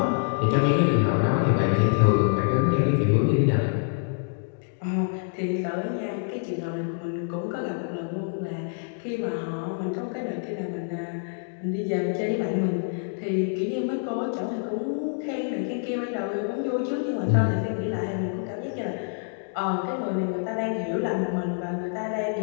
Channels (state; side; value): silent; right; 61 dB below the other